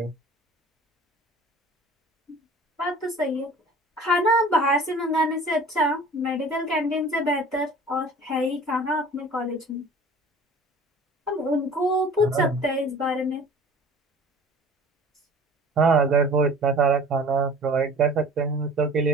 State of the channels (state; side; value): normal; both; correlation 0.44